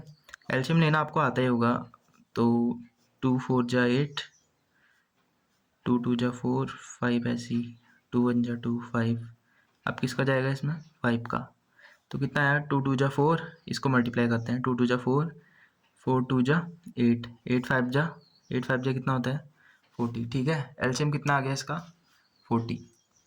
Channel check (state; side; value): identical; both; correlation 1.00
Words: एलसीएम लेना आपको आता ही होगा। तो 2 4 जा 8, 2 2 जा 4, 5 ऐसी, 2 1 जा 2, 5। अब किसका जाएगा इसमें, 5 का। तो कितना आया, 2 2 जा 4, इसको मल्टीप्लाई करते हैं। 2 2 जा 4, 4 2 जा 8, 8 5 जा, 8 5 जा कितना होता है, 40। ठीक है, एलसीएम कितना आ गया इसका, 40।